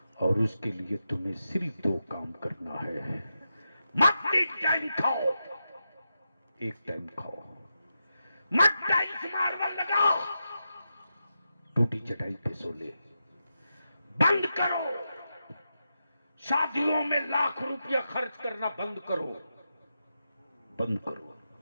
और उसके लिए तुम्हें सिर्फ 2 काम करना है। मत एक टाइम खाओ, एक टाइम खाओ, मत टाइम मार्बल लगाओ, टूटी चटाई पे सो ले। बंद करो, शादियों में लाख रुपया खर्च करना बंद करो, बंद करो।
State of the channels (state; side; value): inverted; both; correlation -0.88